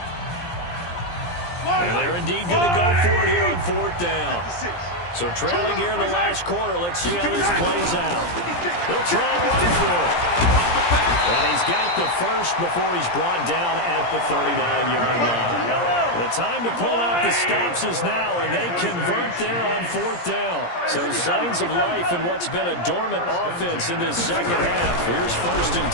And they're indeed going to go for it here on 4th down. So trailing here in the last quarter, let's see how this plays out. They'll try and run for it. And he's got the first before he's brought down at the 39-yard line. The time to pull out the stops is now, and they convert there on 4th down. So signs of life in what's been a dormant offense in this 2nd half. Here's 1st and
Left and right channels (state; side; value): late; right; 17 ms